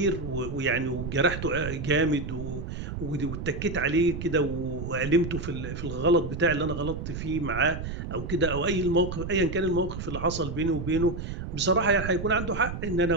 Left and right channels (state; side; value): noise; right; rumble, 6 dB below the sound